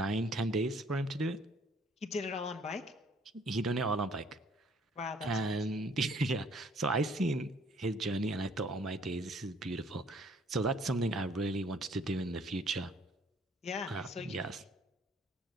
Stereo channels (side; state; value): both; normal; correlation 0.60